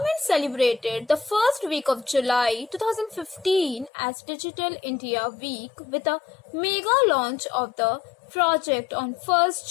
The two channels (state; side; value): drops out; right; at 3.9 s